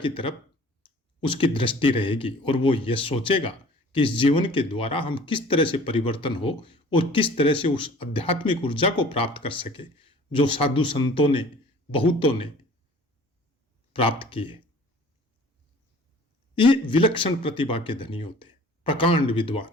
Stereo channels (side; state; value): both; normal; correlation 0.48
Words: तरफ उसकी दृष्टि रहेगी और वो ये सोचेगा कि इस जीवन के द्वारा हम किस तरह से परिवर्तन हो और किस तरह से उस आध्यात्मिक ऊर्जा को प्राप्त कर सके जो साधु संतों ने, बहुतों ने प्राप्त की है। ये विलक्षण प्रतिभा के धनी होते हैं, प्रकांड विद्वान,